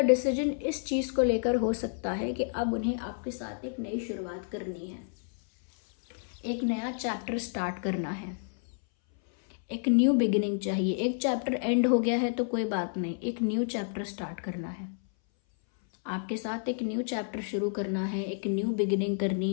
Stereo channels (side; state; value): right; silent; 58 dB below the other